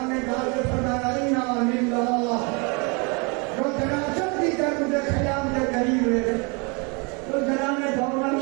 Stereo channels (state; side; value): quieter; left; 31.5 dB